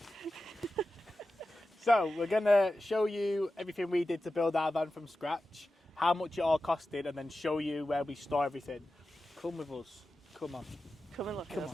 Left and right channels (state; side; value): normal; both; correlation 0.93